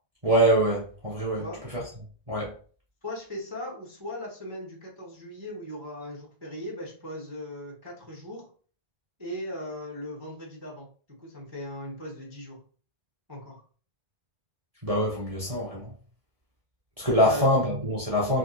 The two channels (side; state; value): left; late; 1.7 ms